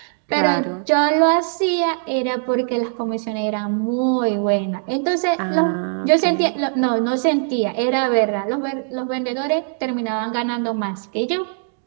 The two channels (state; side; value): silent; left; 65 dB below the other